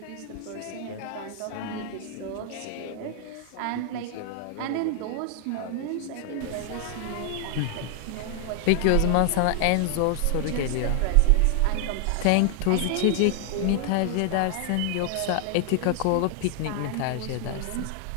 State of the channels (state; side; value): different; both; correlation 0.00